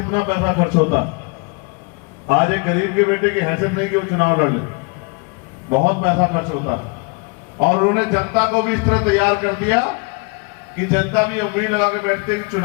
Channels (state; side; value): quieter; right; 31.6 dB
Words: पैसा खर्च होता है। आज एक गरीब के बेटे की हैसियत नहीं कि वो चुनाव लड़ ले, बहुत पैसा खर्च होता है। और उन्होंने जनता को भी इस तरह तैयार कर दिया कि जनता भी उम्मीद लगा के बैठते कि